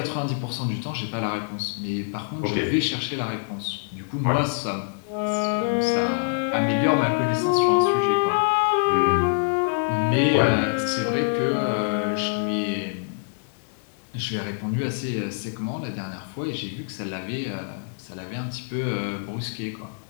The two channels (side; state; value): right; silent; 62 dB below the other